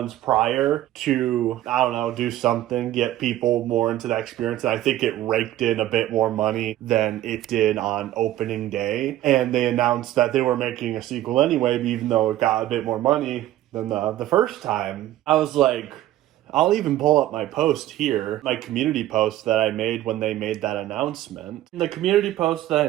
prior to, I don't know, do something, get people more into that experience. And I think it raked in a bit more money than it did on opening day. And they announced that they were making a sequel anyway, even though it got a bit more money than the first time. I was like, I'll even pull up my post here, my community post that I made when they made that announcement. The community post that I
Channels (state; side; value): quieter; left; 14.0 dB